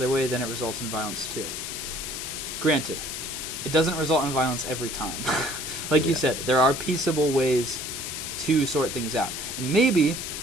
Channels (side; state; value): left; noise; hiss, 6 dB below the sound